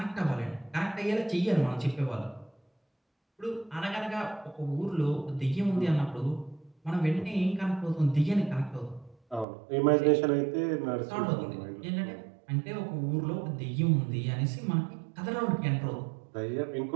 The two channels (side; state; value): left; drops out; at 9.5 s